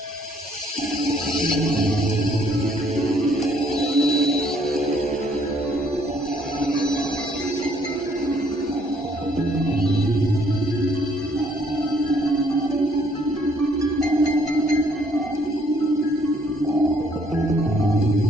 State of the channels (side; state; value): both; normal; correlation 0.65